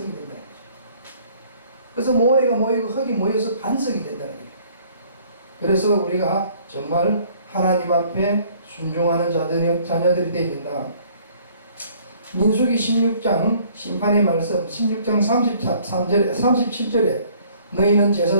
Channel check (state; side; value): inverted; both; correlation -0.58